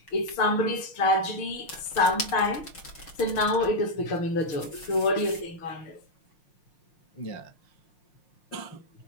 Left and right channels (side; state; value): right; late; 6.2 ms